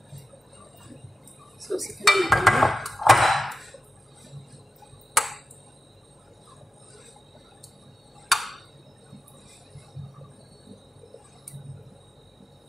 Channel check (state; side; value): normal; both; correlation 0.91